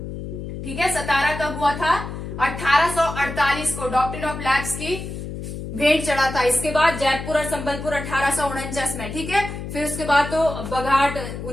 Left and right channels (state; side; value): noise; left; hum, 8 dB below the sound